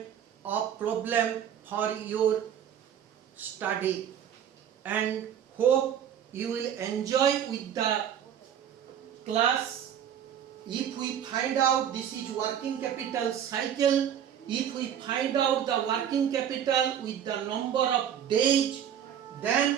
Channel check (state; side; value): quieter; left; 9.3 dB